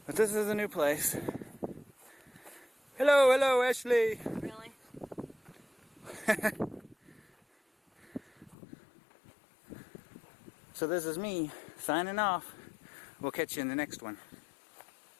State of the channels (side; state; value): right; drops out; at 8.6 s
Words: But this is a new place. Hello, hello, Ashley. Really? So this is me signing off. We'll catch you in the next one.